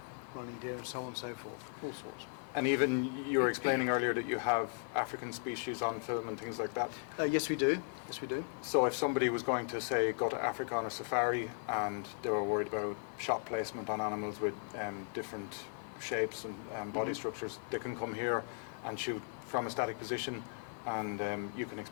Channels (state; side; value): silent; right; 53 dB below the other